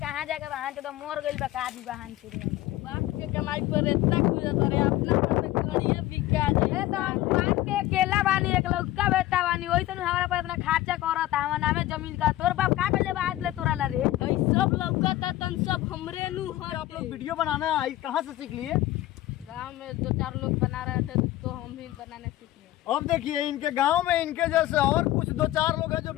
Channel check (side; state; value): right; quieter; 15.4 dB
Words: जाके बहान चोदवा मोर गइल बा का दी बहान चोदवा। बाप के कमाई पर इतना खुजत रे अपना पर करिए बिका जाए तो बाप के केला बानी एक लौका बेटा बानी ओइसन हमरा पर इतना खर्चा करत हमर नामे जमीन का तोर बाप का बेले बात ले तोरा ला रे ई सब लौका त तन सब हमरे नु हर आप लोग वीडियो बनाना कहाँ से सीख लिए? गांव में 2-4 लोग बना रहे थे तो हम भी बनाने सीख लिए। अब देखिए इनके गांव में इनके जैसे और कुछ 2-4 लोग हैं जो।